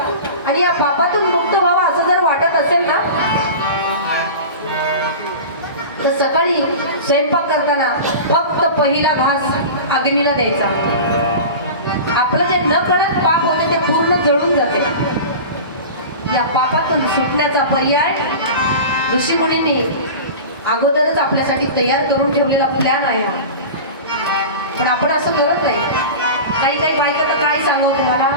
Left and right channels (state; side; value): inverted; both; correlation -0.32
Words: आणि या पापातून मुक्त व्हावा असं जर वाटत असेल ना, तर सकाळी स्वयंपाक करताना फक्त पहिला घास अग्नीला द्यायचा. आपलं जे न कळत पाप होते ते पूर्ण जळून जाते. या पापातून सुटण्याचा पर्याय ऋषीमुनींनी अगोदरच आपल्यासाठी तयार करून ठेवलेला प्लॅन आहे. पण आपण असं करत नाही. काही काही बायका तर काय सांगू तुम्हाला,